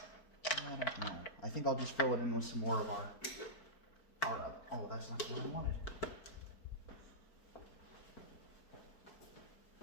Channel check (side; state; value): right; late; 4.5 ms